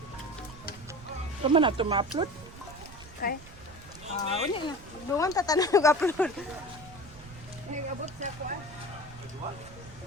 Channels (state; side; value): noise; right; rumble, 18 dB below the sound